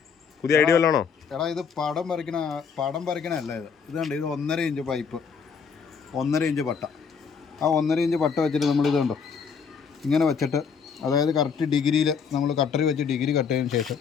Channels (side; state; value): right; quieter; 6.2 dB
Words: പുതിയ ഐഡിയ വല്ലതാണോ? എടാ ഇത് പടം വരയ്ക്കണല്ല ഇത് കണ്ട് ഇത് 1.5 ഇഞ്ച് പൈപ്പ്, 1.5 ഇഞ്ച് പട്ട. ആ 1.5 ഇഞ്ച് പട്ട വെച്ചിട്ട് നമ്മളിത് കണ്ടോ ഇങ്ങനെ വെച്ചിട്ട്, അതായത് കറക്റ്റ് ഡിഗ്രിയിൽ നമ്മൾ കട്ടറി വെച്ച് ഡിഗ്രി കട്ട് ചെയ്തതിന് ശേഷം